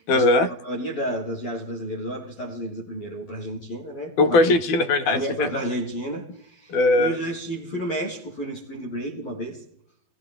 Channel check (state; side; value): late; right; 12 ms